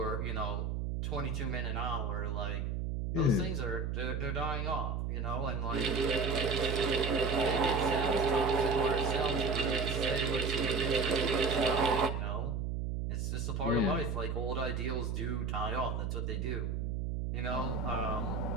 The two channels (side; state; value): right; noise; hum, 1 dB below the sound